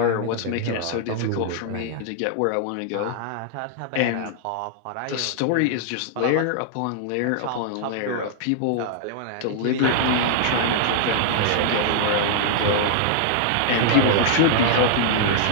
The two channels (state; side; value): different; both; correlation -0.01